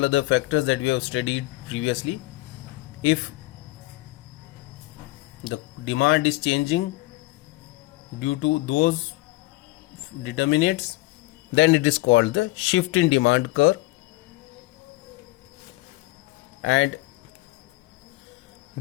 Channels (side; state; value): right; quieter; 20.3 dB